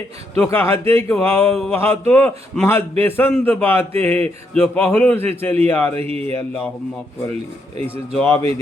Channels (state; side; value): normal; both; correlation 0.77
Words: تو کہتے کہ وہاں تو محض بےسند باتیں ہیں جو پہلوں سے چلی آ رہی ہے، اللہم اغفر لی، ایسے جوابیں